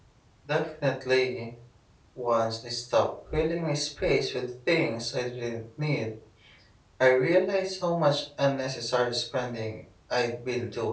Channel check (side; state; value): both; identical; correlation 1.00